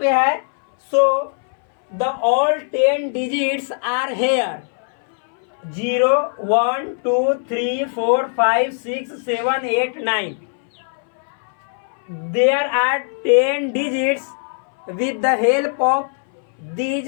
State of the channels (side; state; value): right; silent; 61 dB below the other